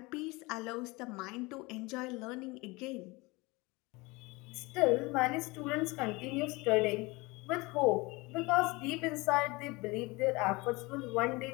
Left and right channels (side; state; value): right; quieter; 24.1 dB